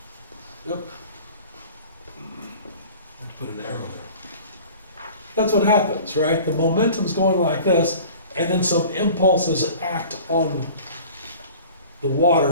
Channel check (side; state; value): both; inverted; correlation -0.44